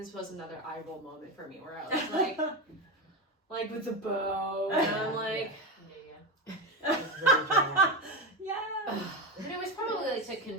was another eye roll moment for me, where I was like with the bow, and I'm like, really dramatic. Yeah. And it was probably like to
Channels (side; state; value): both; normal; correlation 0.17